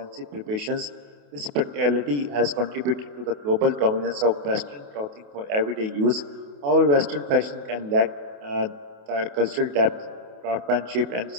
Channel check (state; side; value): late; left; 28 ms